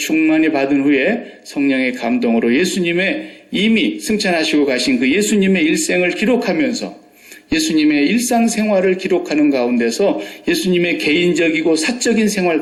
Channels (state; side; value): identical; both; correlation 1.00